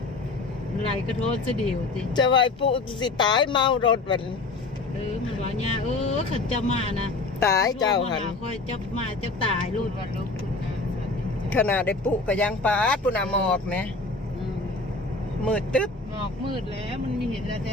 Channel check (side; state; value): right; quieter; 3.5 dB